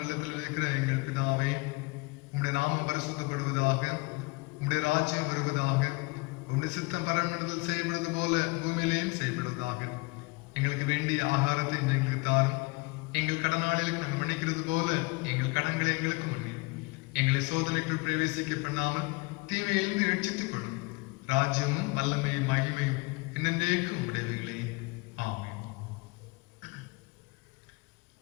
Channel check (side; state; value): right; quieter; 26.7 dB